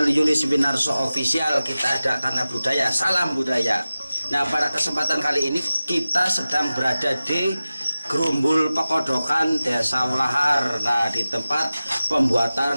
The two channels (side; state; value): both; inverted; correlation -0.96